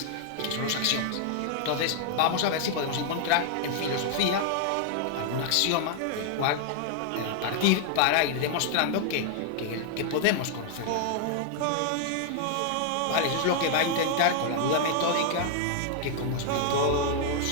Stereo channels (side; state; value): both; different; correlation 0.00